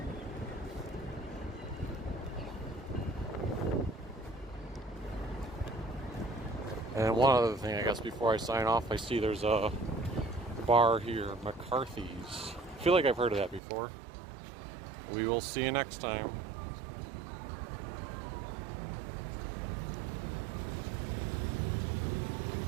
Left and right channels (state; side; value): drops out; left; at 13.6 s